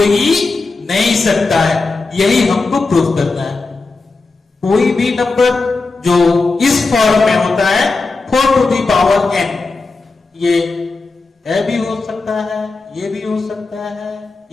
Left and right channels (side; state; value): right; quieter; 3.8 dB